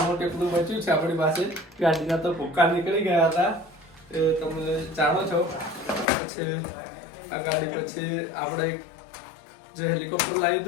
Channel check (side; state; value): right; drops out; at 6.1 s